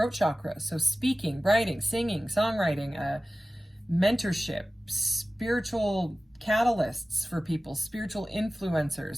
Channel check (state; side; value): normal; both; correlation 0.96